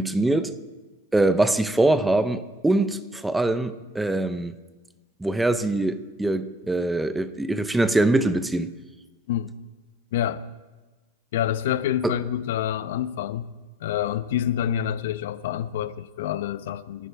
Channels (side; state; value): both; normal; correlation 0.55